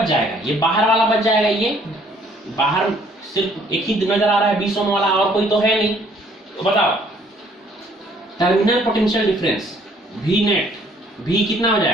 जाएगा, ये बाहर वाला बच जाएगा। ये बाहर सिर्फ एक ही नजर आ रहा है 20 ओम वाला, और कोई तो है नहीं। तो बताओ terminal potential difference V net, V कितना हो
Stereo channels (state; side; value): normal; both; correlation 0.62